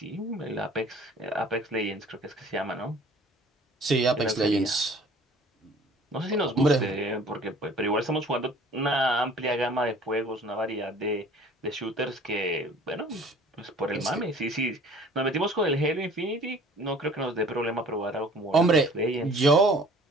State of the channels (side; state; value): both; normal; correlation 0.50